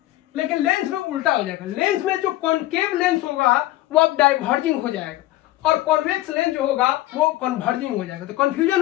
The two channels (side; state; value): right; quieter; 16.4 dB